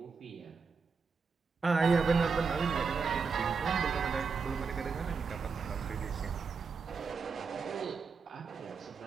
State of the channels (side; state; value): left; quieter; 5.2 dB